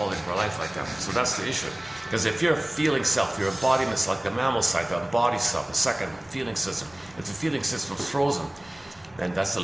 of our life like that. So that's the issue. Because if you're a feeling self, your embodiment's like the mammal side, the embodied self, the second feeling system. If the feeling system's frozen, then that's the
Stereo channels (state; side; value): noise; right; rumble, 28 dB below the sound